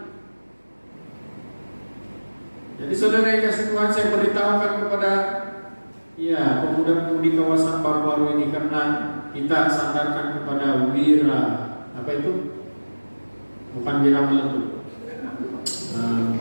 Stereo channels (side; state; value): both; inverted; correlation -1.00